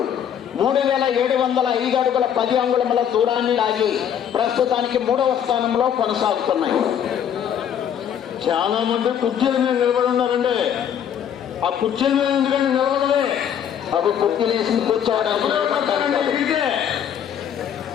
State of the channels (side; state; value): right; quieter; 9.0 dB